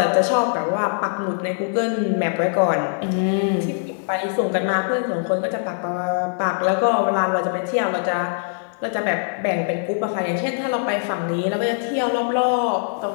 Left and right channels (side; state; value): right; silent; 62 dB below the other